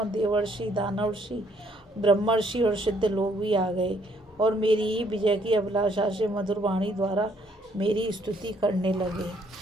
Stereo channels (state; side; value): normal; both; correlation 0.67